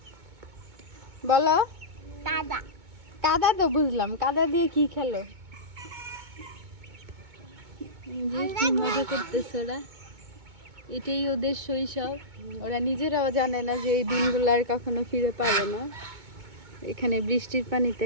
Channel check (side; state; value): left; late; 2.2 ms